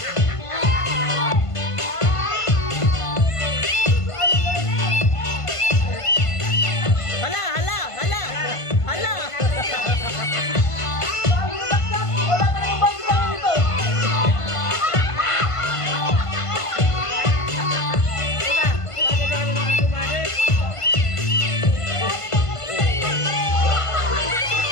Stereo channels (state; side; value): late; right; 1.5 ms